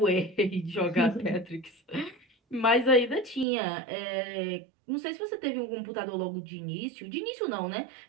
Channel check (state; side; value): drops out; left; at 3.5 s